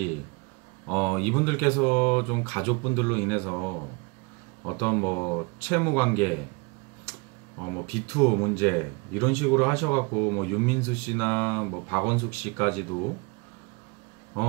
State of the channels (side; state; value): left; quieter; 30.0 dB